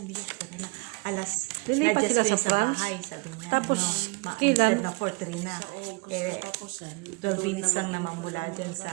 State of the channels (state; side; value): quieter; left; 29.0 dB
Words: bigyan ko na. Alas, Lilipat na-adjust sila ko sa yun sa France? bahay, sabi niya. Tapos, Ma- kailan? instead na 4-3 na. 12 minutes lang naman mula dyan sa